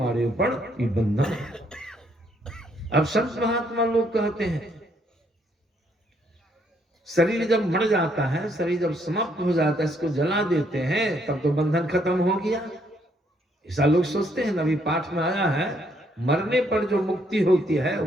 ऊपर ये बंधन है। अब संत महात्मा लोग कहते हैं शरीर जब मर जाता है, शरीर जब समाप्त हो जाता है, इसको जला देते हैं, तब तो बंधन खत्म हो गया। ऐसा लोग सोचते हैं। अभी पाठ में आया है, मरने पर जो मुक्ति होती है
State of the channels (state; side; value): normal; both; correlation 0.70